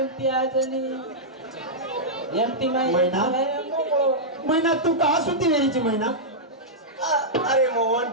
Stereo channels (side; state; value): both; normal; correlation -0.10